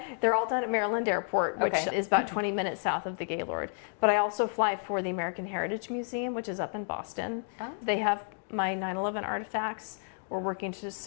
They're all done at Maryland Airport, which is about 20 minutes south of the Gaylord. But I also fly for the American Heritage Museum, which is up in Boston. Oh. They have my 9/11 artifacts. We're working to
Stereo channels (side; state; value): right; silent; 57 dB below the other